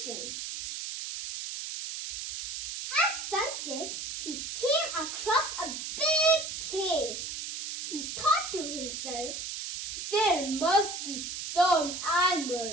At sunset, he came across a big cave. He thought to himself, there must be some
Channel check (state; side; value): noise; right; hiss, 6 dB below the sound